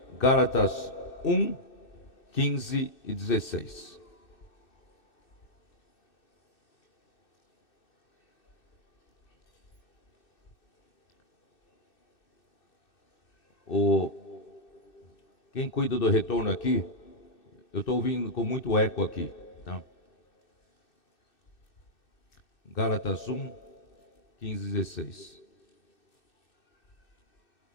Gálatas 1, 15 e 16. Quem cuida do retorno aqui, eu estou ouvindo com muito eco aqui. Tá? Gálatas 1, 15 e 16.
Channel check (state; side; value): late; right; 2.6 ms